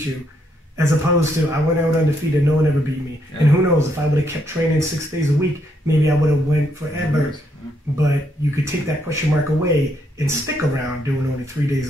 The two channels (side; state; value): both; normal; correlation 0.75